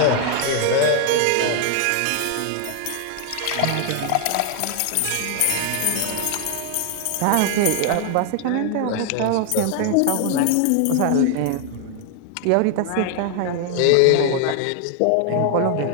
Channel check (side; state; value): both; different; correlation 0.00